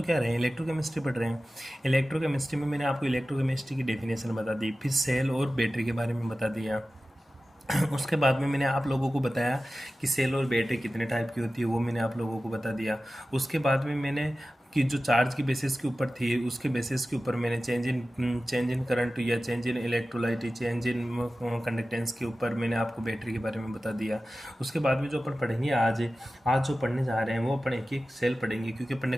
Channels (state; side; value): normal; both; correlation 0.95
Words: क्या रहे हैं, इलेक्ट्रोकेमिस्ट्री पढ़ रहे हैं। इलेक्ट्रोकेमिस्ट्री में मैंने आपको इलेक्ट्रोकेमिस्ट्री की डेफिनेशन बता दी, फिर सेल और बैटरी के बारे में बता दिया। उसके बाद में मैंने आप लोगों को बताया कि सेल और बैटरी कितने टाइप की होती है, वो मैंने आप लोगों को बता दिया। उसके बाद में मैंने कि जो चार्ज की बेसिस के ऊपर थी, उसके बेसिस के ऊपर मैंने चेंज इन करंट या change in electrolyte, change in conductance के ऊपर मैंने आपको बैटरी के बारे में बता दिया। उसके बाद में जो अपन पढ़ेंगे आज जो पढ़ने जा रहे हैं वो अपन एक एक सेल पढ़ेंगे, क्योंकि अपन ने